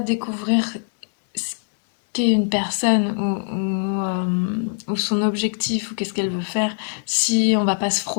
ce qu'est une personne ou son objectif ou qu'est-ce qu'elle veut faire si on va pas se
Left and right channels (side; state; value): right; silent; 64 dB below the other